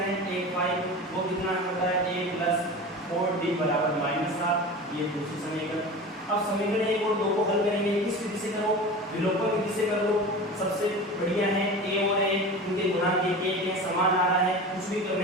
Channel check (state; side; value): normal; both; correlation 0.32